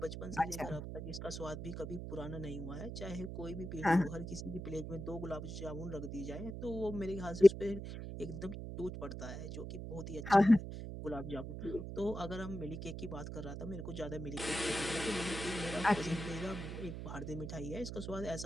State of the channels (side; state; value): right; noise; hum, 7 dB below the sound